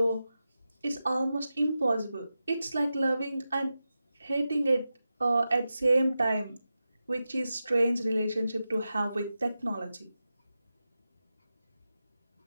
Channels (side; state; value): both; inverted; correlation -0.91